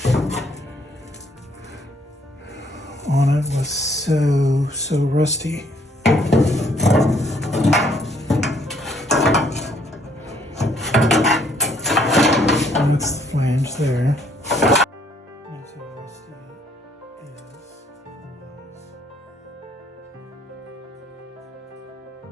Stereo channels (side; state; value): both; normal; correlation 0.65